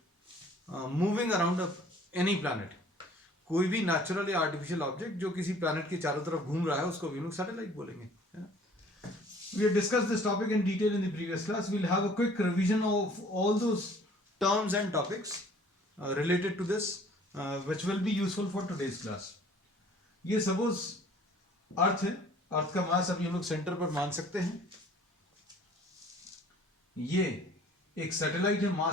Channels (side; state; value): both; normal; correlation 0.53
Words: moving around any planet. कोई भी नेचुरल या आर्टिफिशियल ऑब्जेक्ट जो किसी प्लैनेट के चारों तरफ घूम रहा है उसको भी हम लोग सैटेलाइट बोलेंगे. We have discussed this topic in detail in the previous class. We'll have a quick revision of all those terms and topics related to this, which will be useful for today's class. ये suppose अर्थ है. अर्थ का मास अभी हम लोग centre पर मान सकते हैं. ये एक सैटेलाइट है